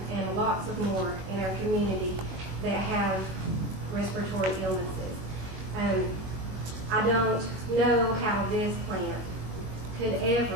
and lots of more in our community that have respiratory illnesses. I don't know how this plant could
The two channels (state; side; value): late; left; 21 ms